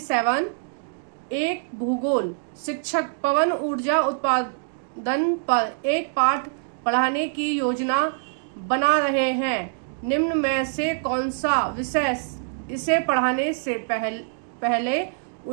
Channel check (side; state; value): left; silent; digital silence